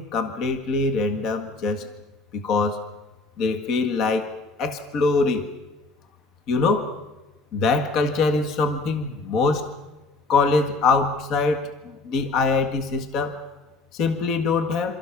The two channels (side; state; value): right; quieter; 3.5 dB